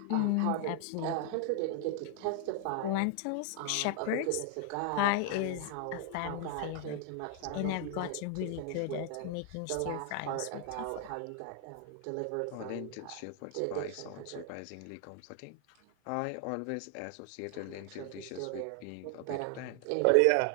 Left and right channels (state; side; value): different; both; correlation 0.00